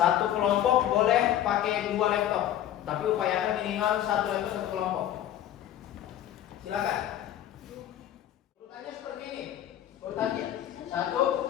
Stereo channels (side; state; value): right; quieter; 11.7 dB